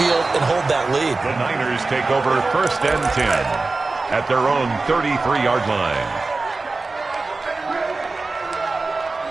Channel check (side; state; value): left; quieter; 3.6 dB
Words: and hold that lead. The Niners take over 1st and 10 at their own 33-yard line.